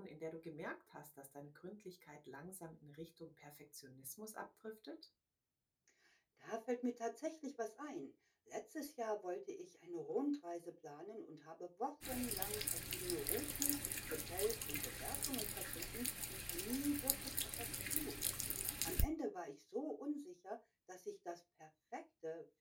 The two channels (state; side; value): identical; both; correlation 1.00